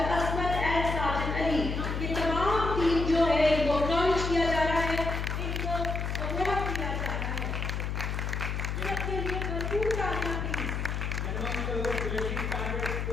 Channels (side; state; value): left; noise; hum, 2 dB below the sound